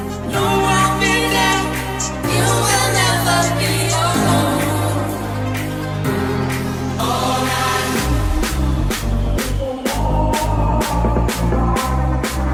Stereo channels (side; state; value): both; identical; correlation 1.00